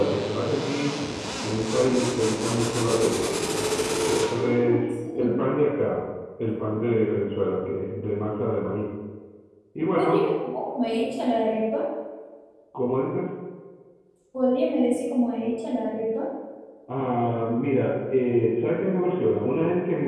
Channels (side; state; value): both; identical; correlation 1.00